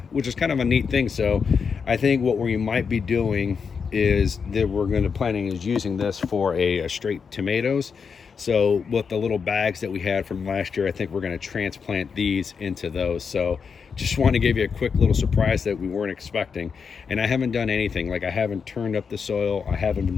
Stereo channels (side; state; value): right; quieter; 5.9 dB